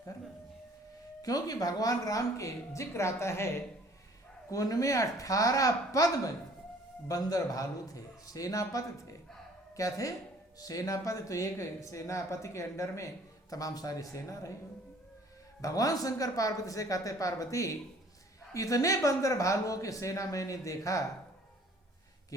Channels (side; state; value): both; normal; correlation 0.54